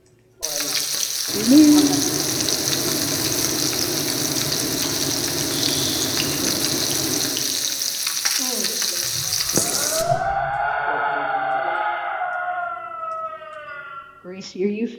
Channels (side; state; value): both; identical; correlation 1.00